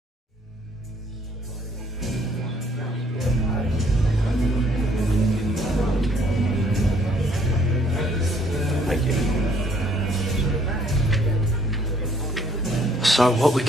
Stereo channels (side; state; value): both; normal; correlation 0.64